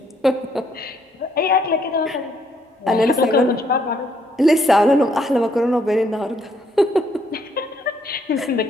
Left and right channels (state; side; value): normal; both; correlation 0.70